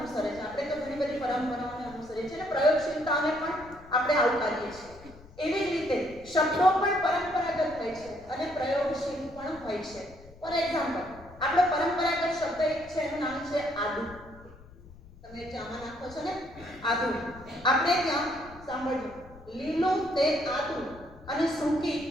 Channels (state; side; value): noise; left; rumble, 21 dB below the sound